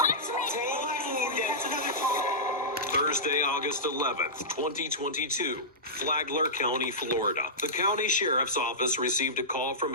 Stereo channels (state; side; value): normal; both; correlation -0.15